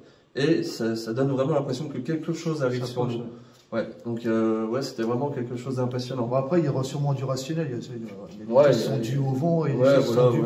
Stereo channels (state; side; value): identical; both; correlation 1.00